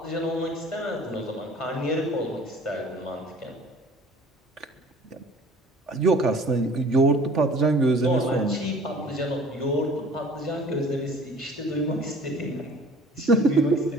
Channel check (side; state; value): both; normal; correlation 0.49